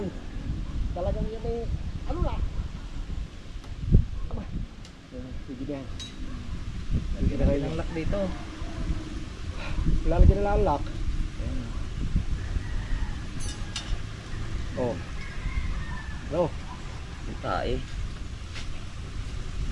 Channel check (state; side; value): identical; both; correlation 1.00